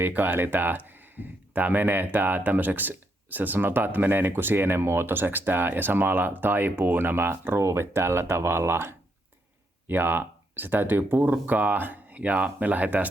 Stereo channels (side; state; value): both; normal; correlation 0.78